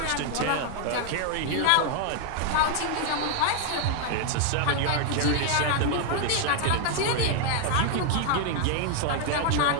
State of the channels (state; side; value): different; both; correlation 0.00